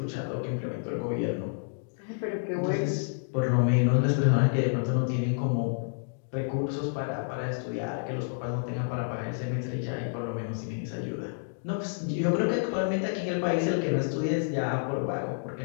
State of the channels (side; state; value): right; silent; digital silence